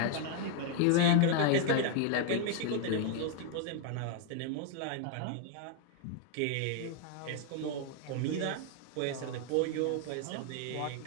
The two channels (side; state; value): both; different; correlation 0.00